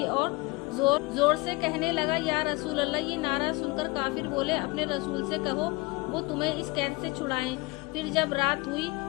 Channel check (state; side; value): quieter; right; 24.9 dB